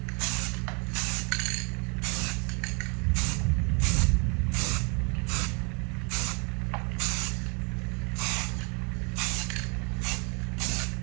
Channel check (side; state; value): left; quieter; 34.0 dB